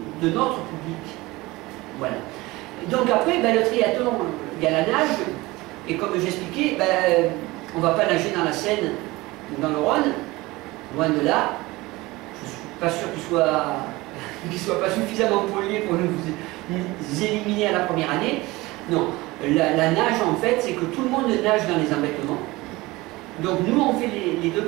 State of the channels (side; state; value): left; quieter; 20.9 dB